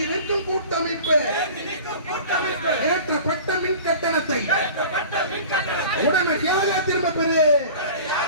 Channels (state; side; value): inverted; both; correlation -0.40